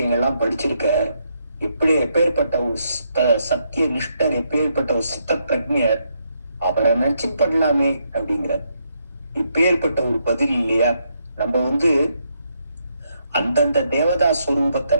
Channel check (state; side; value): inverted; both; correlation -0.77